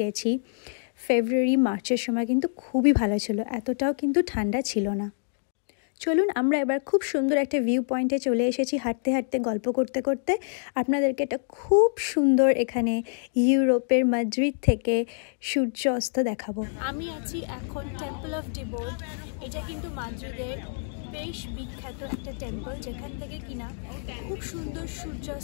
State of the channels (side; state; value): right; silent; digital silence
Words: গেছি ফেব্রুয়ারি মার্চের সময় কিন্তু খুবই ভালো ছিল, এতটাও কিন্তু ঠান্ডা ছিল না। চলুন আমরা এবার খুব সুন্দর একটা ভিউ পয়েন্টে চলে এসেছি, হাঁটতে হাঁটতে গল্প করতে করতে আপনাদেরকে একটা খুব সুন্দর এখানে ইউরোপের মাদ্রিদ থেকে সূর্য অস্ত দেখাবো। আমি আছি এখন টেম্পল অফ ডিবোর্ড। এটা কিন্তু মাদ্রিদের বেশ বিখ্যাত একটা টেম্পল, যেখান থেকে কিনা খুব সুন্দর